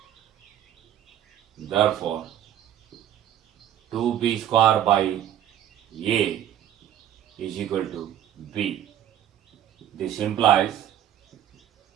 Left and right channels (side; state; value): left; quieter; 11.1 dB